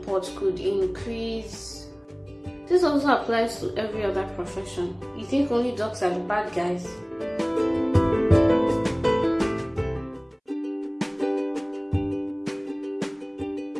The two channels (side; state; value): both; identical; correlation 1.00